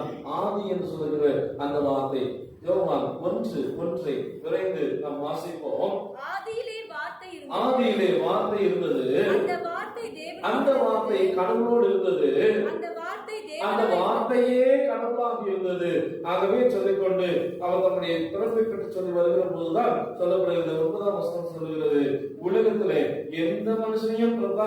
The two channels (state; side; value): identical; both; correlation 1.00